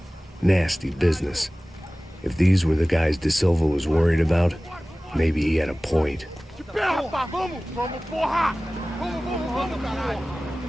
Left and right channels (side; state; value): both; normal; correlation 0.98